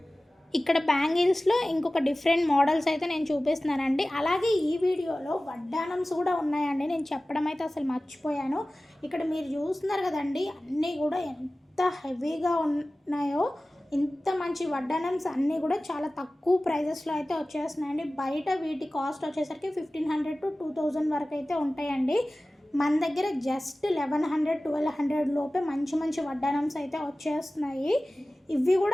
ఇక్కడ బ్యాంగిల్స్లో ఇంకొక డిఫరెంట్ మోడల్స్ అయితే నేను చూపిస్తున్నానండి. అలాగే ఈ వీడియోలో వడ్డానమ్స్ కూడా ఉన్నాయండి. నేను చెప్పడం అయితే అసలు మర్చిపోయాను. ఇక్కడ మీరు చూస్తున్నారు కదండి, అన్నీ కూడా ఎంత హెవీగా ఉన్నాయో. ఇంత మంచి వడ్డానమ్స్ అన్నీ కూడా చాలా తక్కువ ప్రైజెస్లో అయితే వచ్చేస్తున్నాయండి. బయట వీటి కాస్ట్ వచ్చేసరికి 1500 to 2000 వరకు అయితే ఉంటాయండి. మన దగ్గర జస్ట్ 1100 1200 లోపే మంచి వడ్డానమ్స్ అయితే వచ్చేస్తున్నాయి. ఇవి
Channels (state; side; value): normal; both; correlation 0.97